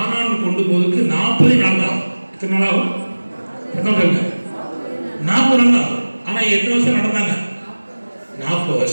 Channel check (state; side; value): inverted; both; correlation -1.00